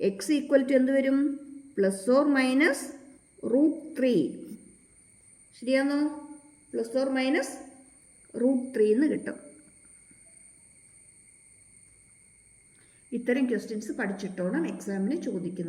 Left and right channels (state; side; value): identical; both; correlation 1.00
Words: x ഈക്വൽ ടു എന്ത് വരും? +or- √3. ശരിയാണോ? +or- √3 എന്ന് കിട്ടും. ഇത്തരം ക്വസ്റ്റ്യൻസ് പഠിച്ചിട്ടോണം എക്സാമിന്